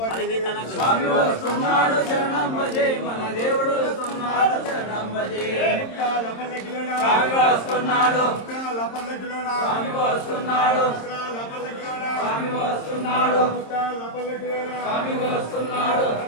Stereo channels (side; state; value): right; late; 26 ms